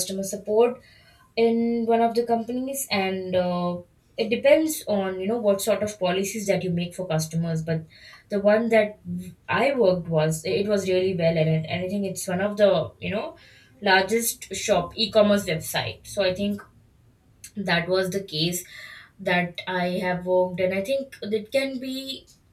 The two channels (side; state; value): both; identical; correlation 1.00